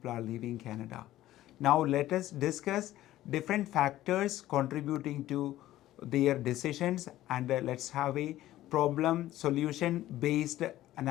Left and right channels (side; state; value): right; quieter; 14.6 dB